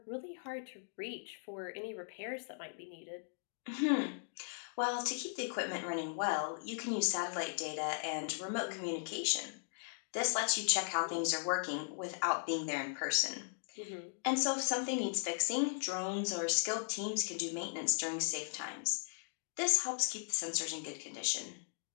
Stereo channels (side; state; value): right; silent; digital silence